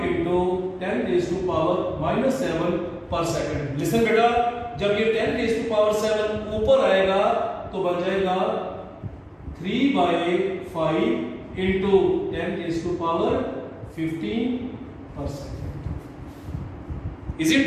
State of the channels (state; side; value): identical; both; correlation 1.00